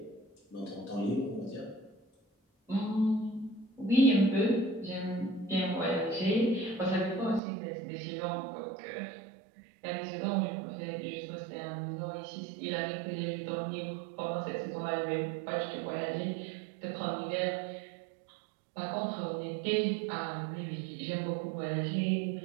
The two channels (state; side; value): drops out; left; at 7.4 s